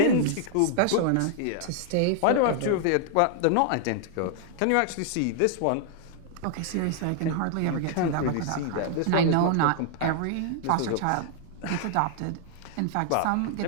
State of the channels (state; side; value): different; both; correlation -0.01